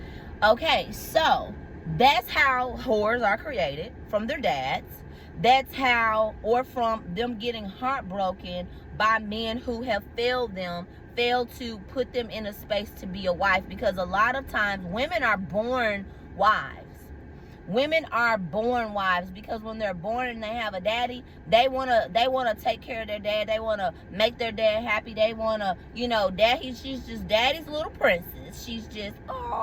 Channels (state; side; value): identical; both; correlation 1.00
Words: Okay, so that's how whores are created, from their dads. That's how, or from them getting heartbroken by men who have failed to put them in a space to be a wife. Because a lot of times women are born wives. Women are born wives because when they're born and they have a daddy, they wanna take care of their dad. They wanna make their dad happy. They wanna, you know, she's just daddy's little princess. She's just,